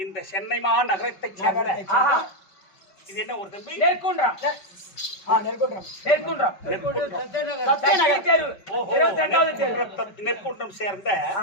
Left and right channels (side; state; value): right; late; 5.2 ms